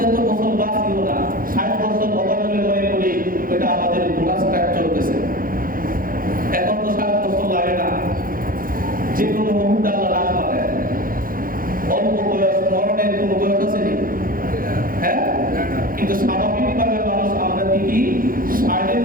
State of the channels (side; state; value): left; late; 0.41 ms